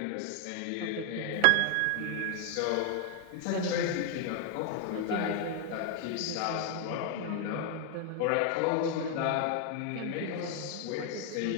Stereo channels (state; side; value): different; both; correlation 0.00